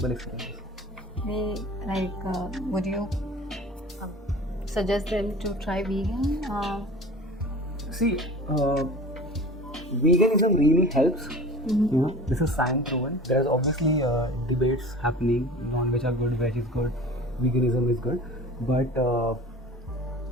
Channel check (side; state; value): both; normal; correlation 0.39